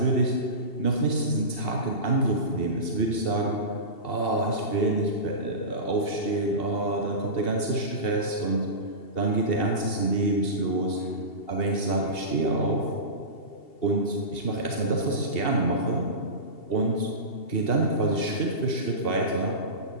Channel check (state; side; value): late; right; 2.7 ms